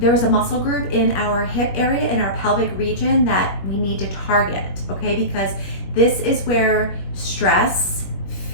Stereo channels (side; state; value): right; late; 21 ms